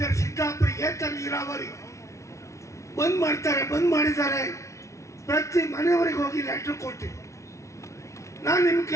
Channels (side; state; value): right; late; 0.14 ms